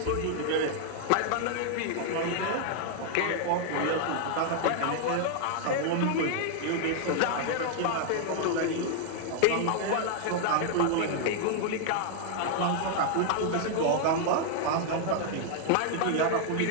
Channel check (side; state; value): both; different; correlation 0.00